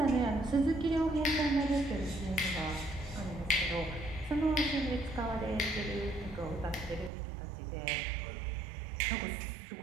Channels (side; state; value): left; drops out; at 7.1 s